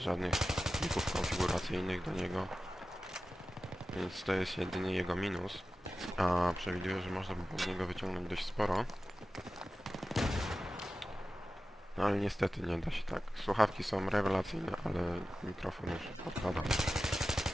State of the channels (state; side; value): normal; both; correlation 0.94